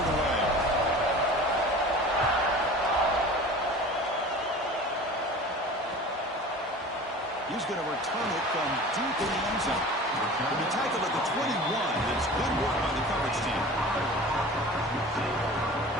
away. He's going to return it from deep in the end zone. He'll be tackled at the 21. It's good work by the coverage team.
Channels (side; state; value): both; normal; correlation 0.39